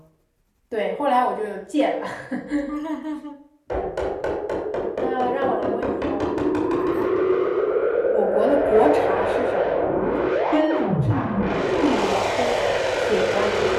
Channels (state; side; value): identical; both; correlation 1.00